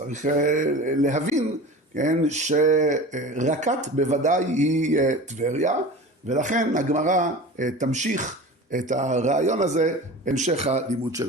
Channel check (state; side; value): normal; both; correlation 0.34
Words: להבין, כן, שרקת בוודאי היא טבריה, ולכן הגמרא תמשיך את הרעיון הזה המשך הלימוד